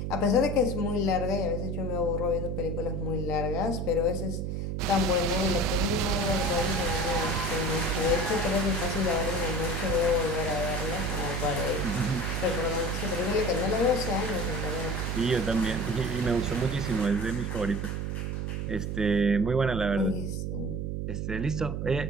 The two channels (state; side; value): noise; right; hum, 2 dB below the sound